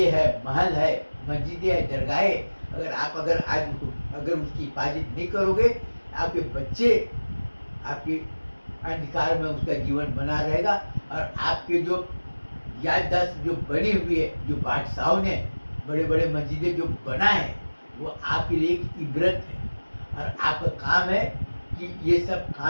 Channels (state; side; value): inverted; both; correlation -1.00